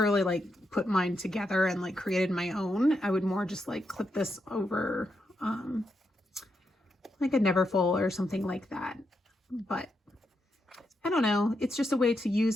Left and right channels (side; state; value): both; normal; correlation 0.83